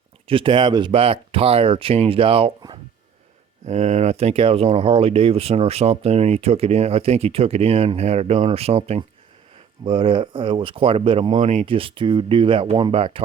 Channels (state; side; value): quieter; left; 7.5 dB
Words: just to have his back tire changed out. And I think that was on a Harley Davidson or something, and he took it in. I think he took it in, had it done or something. But it was quite a bit of money just to do that one back